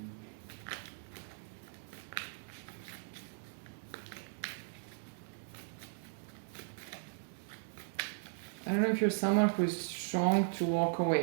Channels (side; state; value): left; silent; digital silence